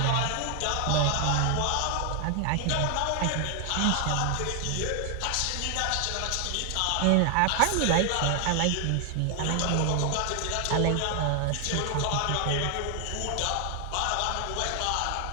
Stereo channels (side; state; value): both; different; correlation 0.00